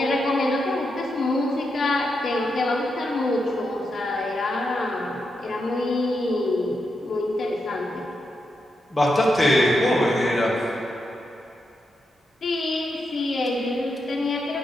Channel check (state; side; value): normal; both; correlation 0.85